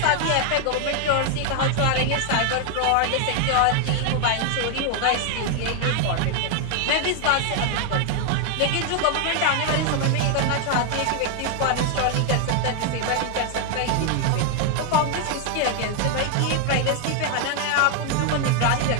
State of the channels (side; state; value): both; different; correlation 0.01